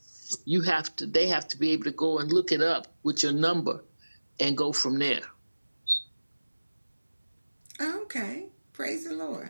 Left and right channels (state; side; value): inverted; both; correlation -1.00